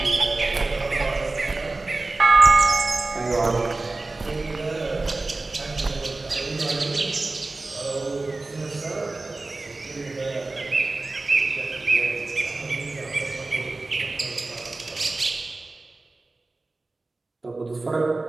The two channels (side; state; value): left; quieter; 3.3 dB